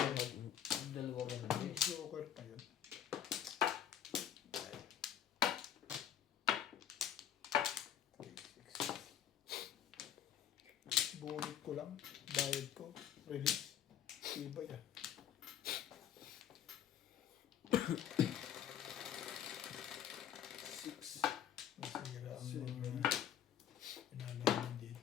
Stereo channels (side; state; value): right; quieter; 9.8 dB